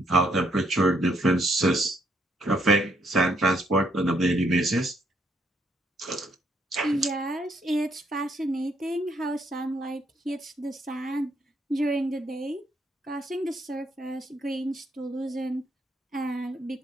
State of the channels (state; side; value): normal; both; correlation 0.72